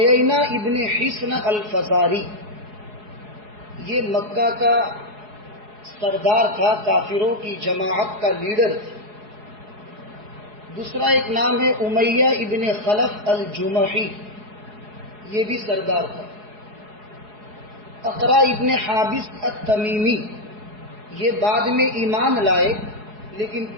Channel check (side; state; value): left; late; 4.7 ms